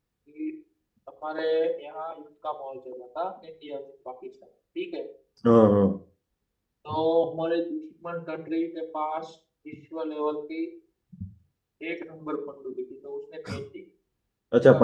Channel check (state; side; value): identical; both; correlation 1.00